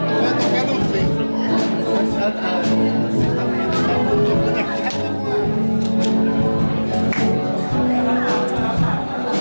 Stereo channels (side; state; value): both; inverted; correlation -1.00